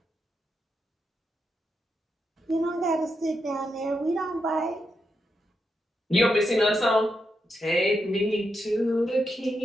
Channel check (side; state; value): both; normal; correlation 0.84